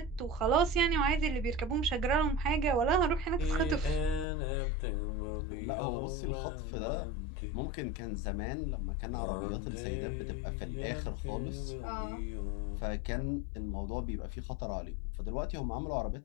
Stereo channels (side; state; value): right; drops out; at 4.2 s